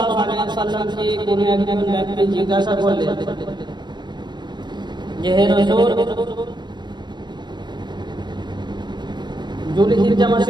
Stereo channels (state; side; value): late; left; 0.22 ms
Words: আলাইহি ওয়াসাল্লামকে কোন একজন ব্যক্তি জিজ্ঞাসা করলেন যে হে রাসূল, যুলহিজ্জা